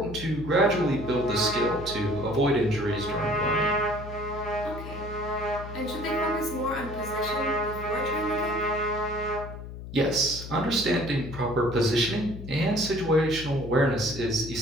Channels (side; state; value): left; noise; hum, 11 dB below the sound